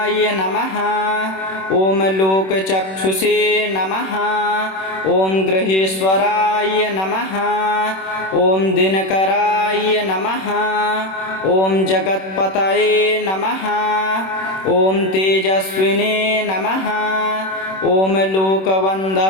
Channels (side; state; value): right; late; 26 ms